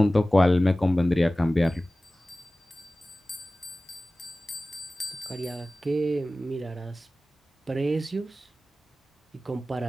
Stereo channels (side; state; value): both; normal; correlation 0.97